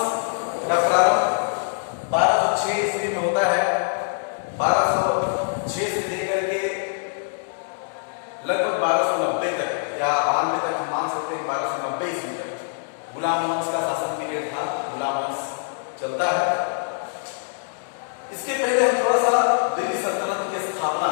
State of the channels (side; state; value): right; silent; digital silence